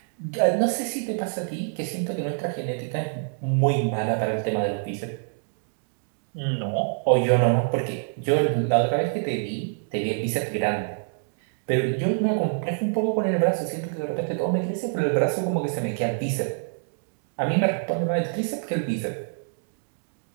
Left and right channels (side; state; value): left; silent; digital silence